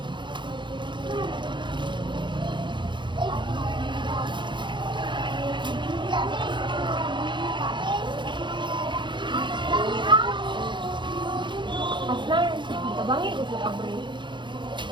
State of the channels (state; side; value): late; left; 0.23 ms